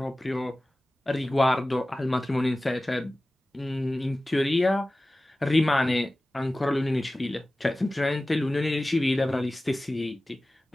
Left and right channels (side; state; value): both; normal; correlation 0.97